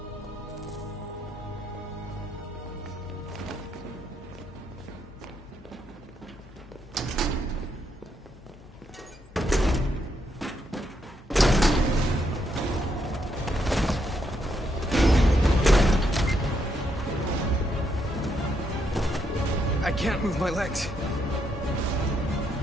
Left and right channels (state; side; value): normal; both; correlation 0.77